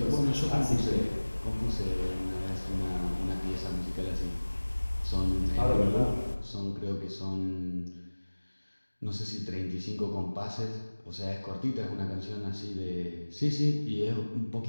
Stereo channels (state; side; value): inverted; both; correlation -1.00